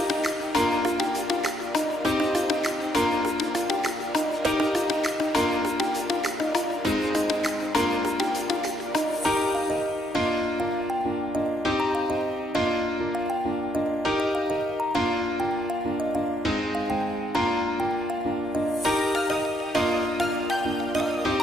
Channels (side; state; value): both; normal; correlation 0.73